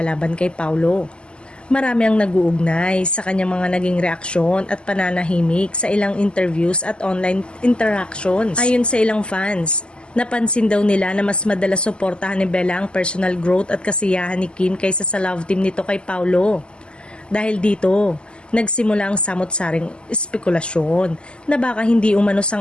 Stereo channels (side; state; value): right; late; 0.050 ms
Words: laban kay Paulo, marami ang nag-uugnay sa kanyang mga naging reaksyon at pananahimik sa ilang interviews at online interactions. Ayon sa ilang fans, napansin daw nila na mas madalas suportahan ni Bella ang personal growth at kasiyahan ni Kim kaysa sa love team nito kay Paulo. Dahil dito, nagsimula ang samot-saring espekulasyon na baka hindi umano